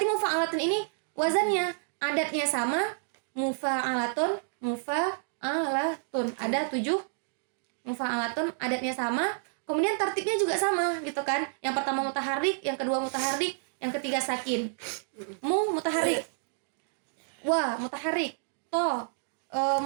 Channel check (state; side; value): silent; left; digital silence